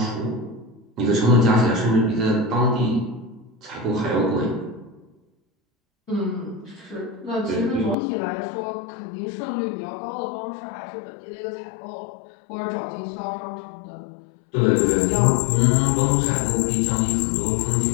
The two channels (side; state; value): right; drops out; at 8.0 s